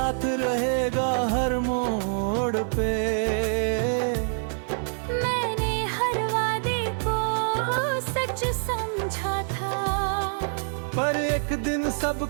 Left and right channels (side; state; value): left; silent; 61 dB below the other